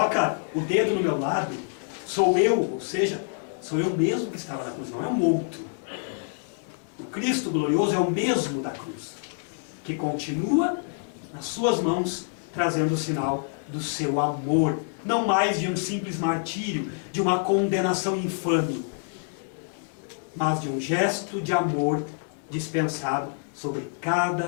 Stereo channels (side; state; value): right; silent; digital silence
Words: o dedo no meu lado, sou eu, ou seja, sou eu mesmo que estava na cruz, não é um outro. O Cristo glorioso é o mesmo da cruz, que continua nas suas mãos, trazendo o sinal do seu amor, não mais de um simples martírio, de uma condenação infame, mas de um gesto de amor dispensado sobre